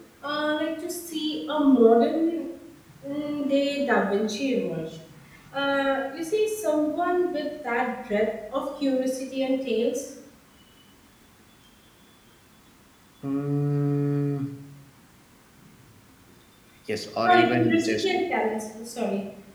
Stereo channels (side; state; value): both; identical; correlation 1.00